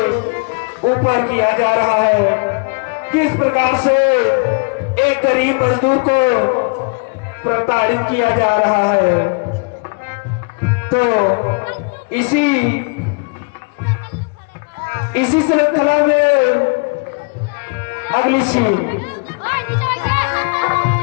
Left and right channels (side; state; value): right; quieter; 34.9 dB